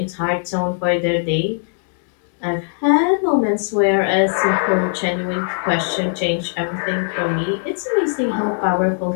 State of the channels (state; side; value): silent; right; digital silence